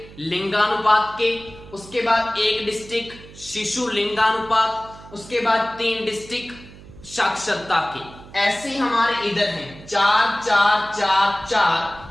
लिंगानुपात के, उसके बाद एक डिस्ट्रिक्ट शिशु लिंगानुपात, उसके बाद 3 डिस्ट्रिक्ट साक्षरता के। ऐसे हमारे इधर हैं 4 4 4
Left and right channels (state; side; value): noise; right; hum, 19 dB below the sound